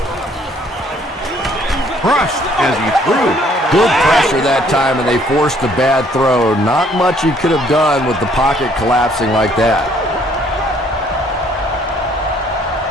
Crushed as he threw. Good pressure that time, and they forced a bad throw. Not much he could have done with the pocket collapsing like that.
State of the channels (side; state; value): both; normal; correlation 0.62